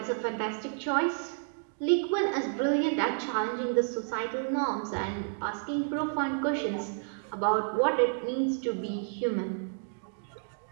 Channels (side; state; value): left; silent; digital silence